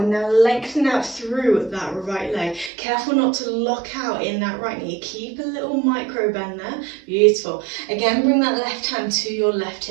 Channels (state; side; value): drops out; left; at 2.7 s